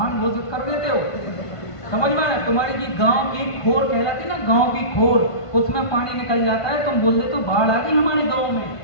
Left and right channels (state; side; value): late; right; 1.5 ms